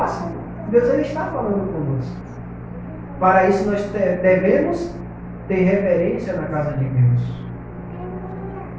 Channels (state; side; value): identical; both; correlation 1.00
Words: Deus, Ele está falando conosco. Para isso nós devemos ter reverência na casa de Deus.